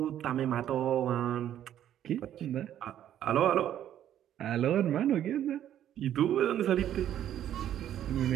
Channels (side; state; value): left; quieter; 11.1 dB